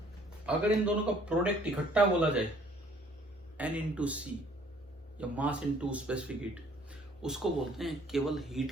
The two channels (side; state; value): both; normal; correlation 0.59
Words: अगर इन दोनों का प्रोडक्ट इकट्ठा बोला जाए N इंटू सी या मास इंटू स्पेसिफिक हीट, उसको बोलते हैं केवल हीट